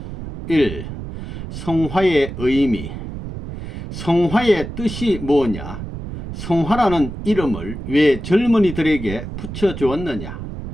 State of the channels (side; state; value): right; noise; rumble, 9 dB below the sound